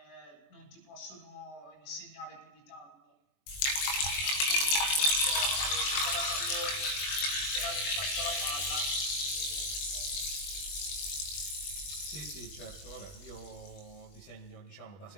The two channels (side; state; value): right; late; 21 ms